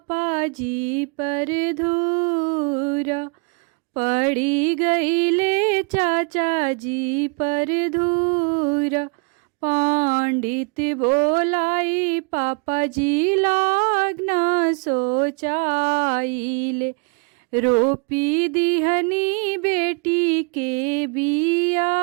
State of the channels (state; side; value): quieter; left; 35.2 dB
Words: जी पर धूरा, पड़ी गईले चाचा जी पर धूरा। पंडित बोलाई पापा जी लागना सोचाइले, रोपी दिहनी बेटी के